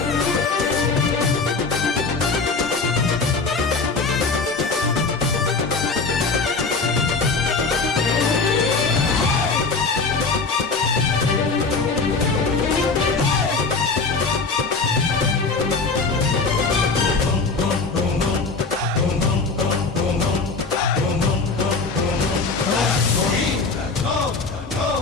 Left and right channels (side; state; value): right; quieter; 4.2 dB